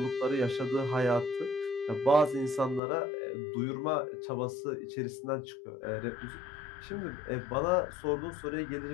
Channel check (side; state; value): right; drops out; at 2.8 s